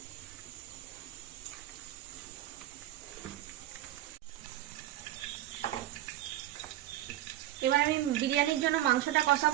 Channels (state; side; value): quieter; left; 13.7 dB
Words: এবার আমি বিরিয়ানির জন্য মাংসটা